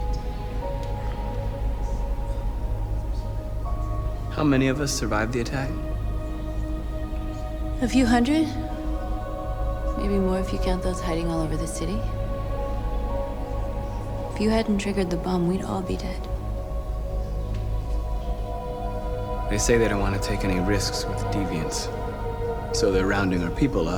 How many of us survived the attack? A few hundred? Maybe more if you count those hiding all over the city. If you hadn't triggered the bomb, we'd all be dead. They say they don't want to take any risks with deviants. So they're rounding our people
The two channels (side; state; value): both; identical; correlation 1.00